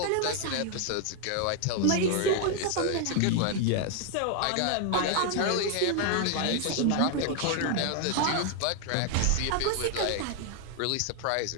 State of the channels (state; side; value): different; both; correlation 0.00